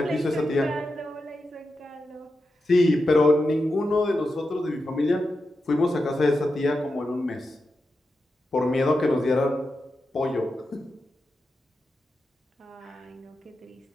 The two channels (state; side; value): normal; both; correlation 0.89